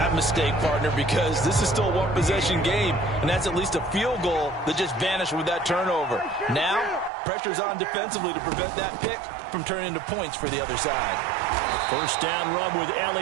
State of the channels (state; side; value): drops out; left; at 7.1 s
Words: mistake, partner, because this is still a one-possession game, and that's at least a field goal that just vanished with that turnover. Now, pressure's on defensively to prevent that pick from turning into points for the other side. First down run with